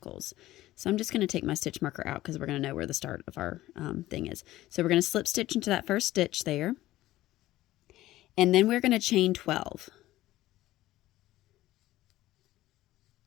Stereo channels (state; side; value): quieter; right; 15.7 dB